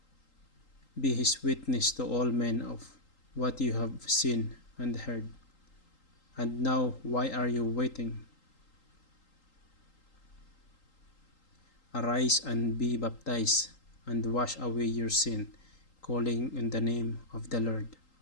be his witness to all men of what you have seen and heard. And now, why are you waiting? Arise and be baptized, and wash away your sin, calling in the name of the Lord.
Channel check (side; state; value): right; late; 3.8 ms